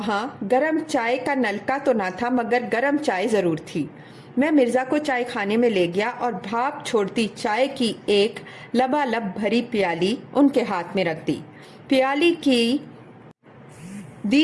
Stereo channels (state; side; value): identical; both; correlation 1.00